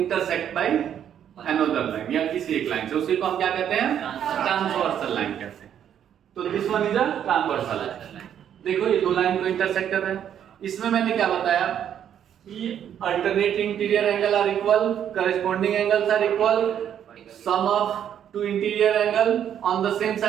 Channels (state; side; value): quieter; left; 9.5 dB